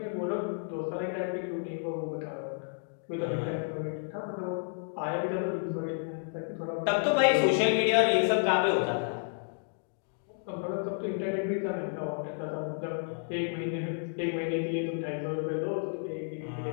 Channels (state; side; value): silent; right; digital silence